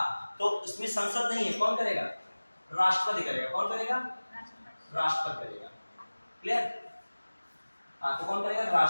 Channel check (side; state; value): both; inverted; correlation -1.00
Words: तो इसमें संसद नहीं है, कौन करेगा, राष्ट्रपति करेगा। कौन करेगा, राष्ट्रपति करेगा। क्लियर। हाँ तो कौन करेगा,